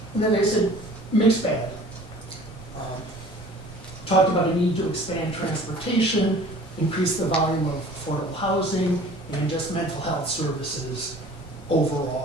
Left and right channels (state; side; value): normal; both; correlation 0.47